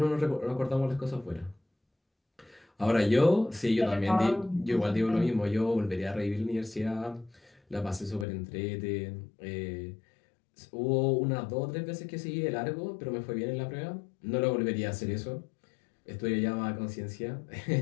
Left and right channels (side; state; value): right; drops out; at 8.2 s